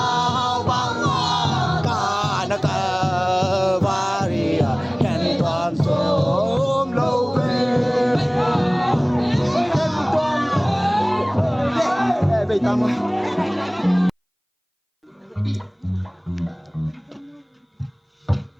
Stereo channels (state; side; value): identical; both; correlation 1.00